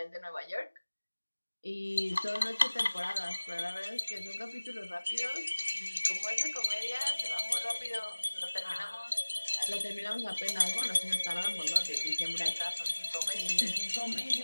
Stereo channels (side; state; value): both; inverted; correlation -1.00